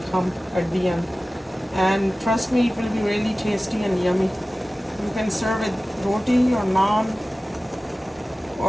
come at the end. And trust me, it will be really tasty and yummy. You can serve it roti or naan,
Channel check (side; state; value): both; normal; correlation 0.96